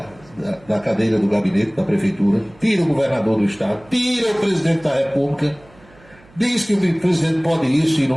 cadeira do gabinete da prefeitura, tira o governador do estado, tira o presidente da República, diz que o presidente pode isso e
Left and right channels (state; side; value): noise; right; hum, 27 dB below the sound